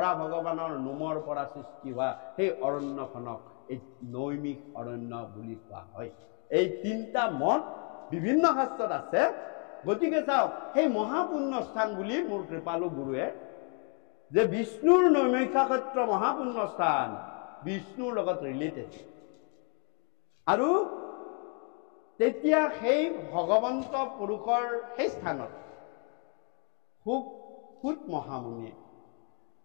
ভগৱানৰ নোমৰ পৰা সৃষ্টি হোৱা সেই অৰণ্যখনক এই নৈমিষ অৰণ্য বুলি কোৱা হয়। এই 3টা মত বিভিন্ন শাস্ত্ৰত আছে। গতিকে চাওক, সেই মহাপুণ্য স্থান বুলি মোৰ কৃপালু গুৰুৱে যে বিষ্ণুৰ নৈমিষাক্ষেত্ৰ মহাপুণ্য স্থান, বিষ্ণুৰ লগত ৰিলেটেড। আৰু তেতিয়া সেই ভগৱন্ত পুৰুষৰ সেই স্থানত সুত মহামুনিয়ে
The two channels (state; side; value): quieter; right; 39.9 dB